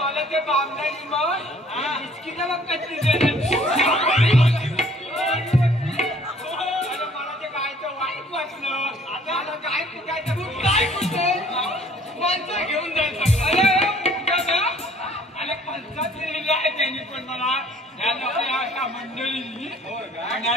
ते बामणारी मग बिस्किट मग कशी देणार मला ते गायचं वाईट वाटलं आता मला गाय कुठायचं काय कुठे माणसं घेऊन जायचं अरे पंचायत लिहिलेलं आहे त्यांनी पण मला या अशा मंडळींनी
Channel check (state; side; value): normal; both; correlation 0.56